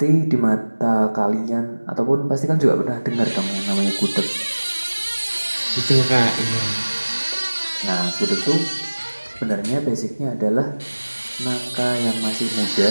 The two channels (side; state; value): both; inverted; correlation -1.00